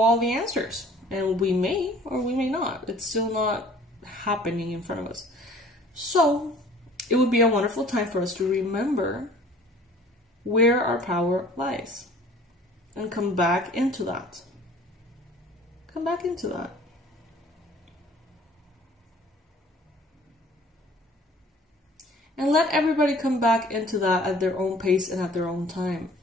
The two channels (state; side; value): normal; both; correlation 0.51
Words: the answers, and we may or we may not. It's still not happening in front of us. So it would be a wonderful time for us to remember where our power lies and come back into that. Come back into that. And let everybody come back into that at their own pace and at their own time.